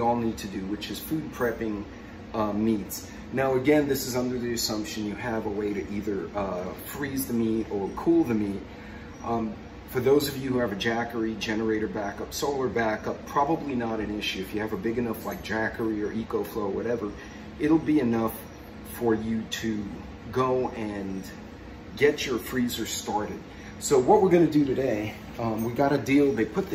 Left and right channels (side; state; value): both; identical; correlation 1.00